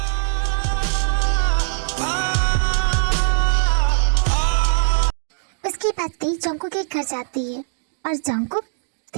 उसके बाद ते जंगकुक के घर जाती है और जंगकुक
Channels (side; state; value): left; silent; digital silence